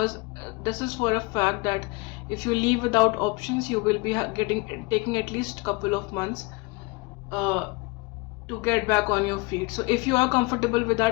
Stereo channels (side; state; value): right; quieter; 26.8 dB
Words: this is for a fact that if you leave without options, you will be taking at least couple of months uh, to get back on your feet. So if you are comfortable with